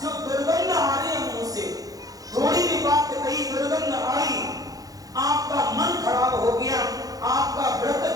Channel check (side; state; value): left; late; 0.17 ms